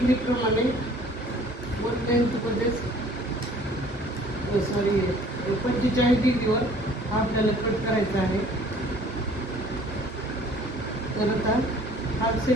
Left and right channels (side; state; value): both; normal; correlation 0.53